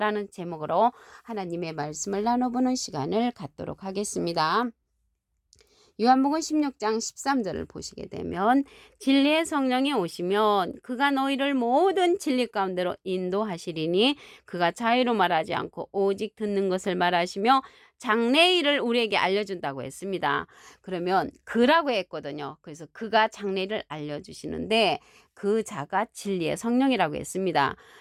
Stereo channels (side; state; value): both; identical; correlation 1.00